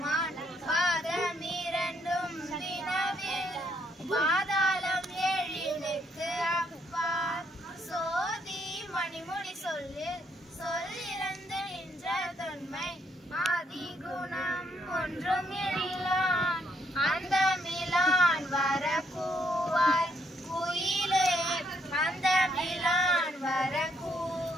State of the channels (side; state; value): both; normal; correlation 0.72